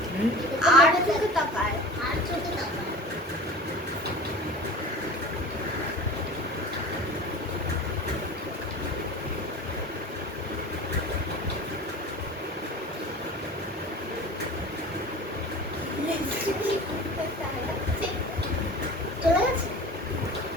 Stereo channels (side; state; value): both; normal; correlation 0.37